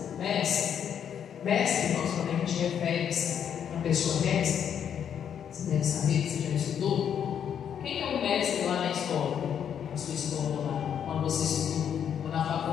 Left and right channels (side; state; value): right; quieter; 8.6 dB